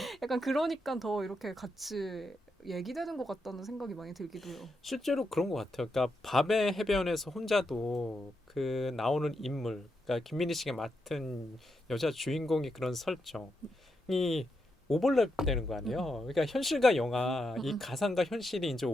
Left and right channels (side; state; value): both; normal; correlation 0.83